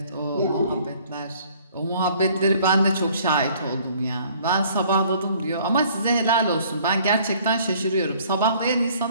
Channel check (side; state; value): both; inverted; correlation -0.57